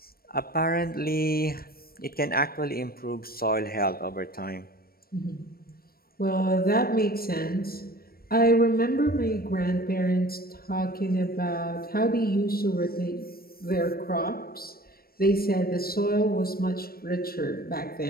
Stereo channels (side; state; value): right; late; 0.44 ms